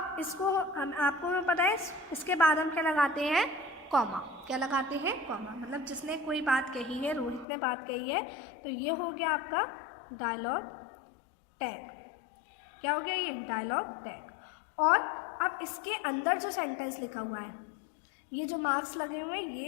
इसको आपको पता है इसके बाद हम क्या लगाते हैं? कॉमा। क्या लगाते हैं? कॉमा। मतलब जिसने कोई बात कही है, रोहित ने बात कही है, तो ये हो गया आपका डायलॉग टैग। क्या हो गया? ये डायलॉग टैग। और अब इसके अंदर जो सेंटेंस लिखा हुआ है, ये जो मार्क्स लगे हुए हैं,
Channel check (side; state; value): right; drops out; at 7.5 s